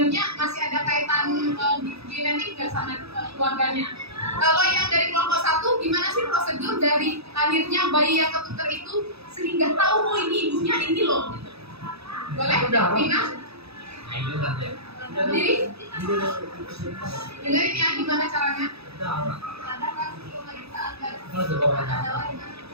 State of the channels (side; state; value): left; late; 0.78 ms